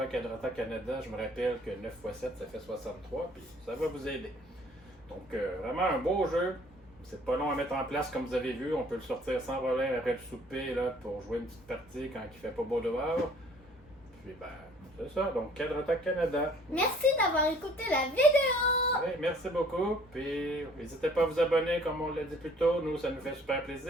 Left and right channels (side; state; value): both; normal; correlation 0.56